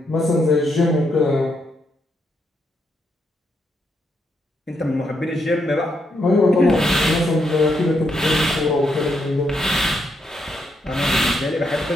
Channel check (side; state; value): both; normal; correlation 0.79